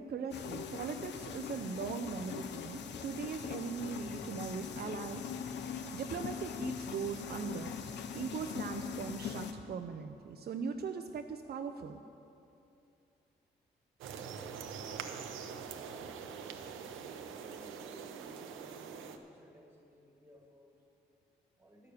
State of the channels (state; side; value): normal; both; correlation 0.42